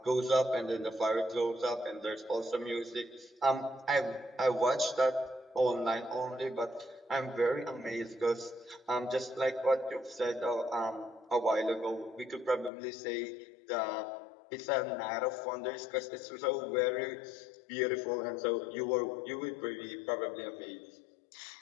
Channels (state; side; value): drops out; right; at 12.7 s